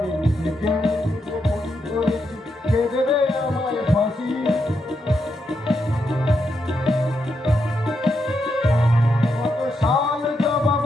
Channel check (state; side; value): normal; both; correlation 0.82